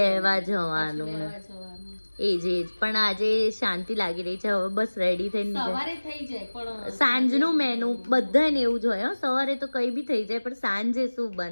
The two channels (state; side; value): inverted; both; correlation -1.00